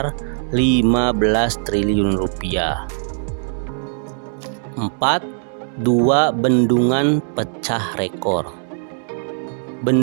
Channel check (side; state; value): left; silent; digital silence